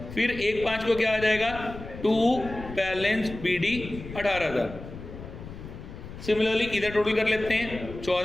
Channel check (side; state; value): left; noise; rumble, 12 dB below the sound